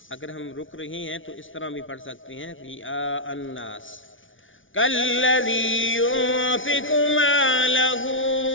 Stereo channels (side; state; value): right; late; 0.57 ms